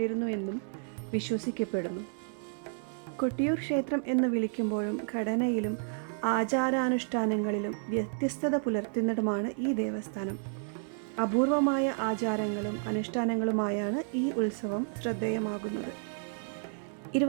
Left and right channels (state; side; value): silent; left; 57 dB below the other